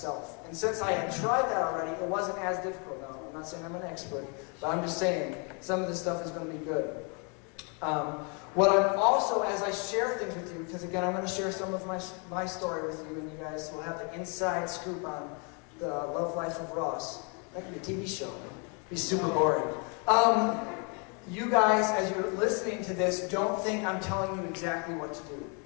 And since I had tried that already, it wasn't as difficult. Now, I'm not saying I'm an expert, but I'm just saying some of this stuff is going to be good. What I'm also, as I share things with you, because again, I'm going to share some of my story with you, and you guys will have the inside scoop on the Love Life of Ross. That could be a TV show. It'd be super boring. You guys, as you're listening to this, don't think I'm telling you exactly what to do.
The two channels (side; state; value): right; quieter; 35.6 dB